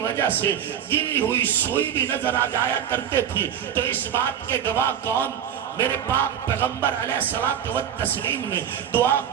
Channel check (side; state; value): left; quieter; 9.2 dB